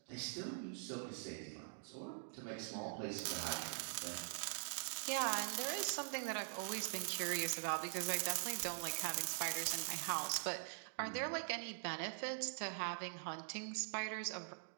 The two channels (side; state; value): left; silent; digital silence